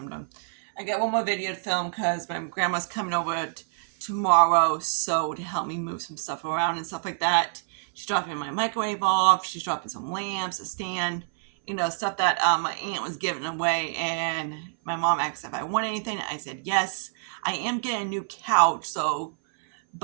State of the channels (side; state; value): left; silent; 60 dB below the other